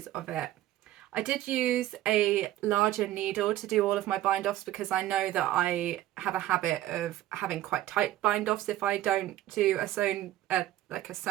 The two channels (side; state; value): left; quieter; 14.1 dB